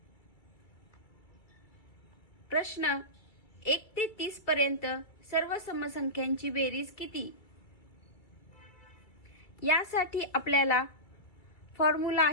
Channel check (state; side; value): late; right; 2.3 ms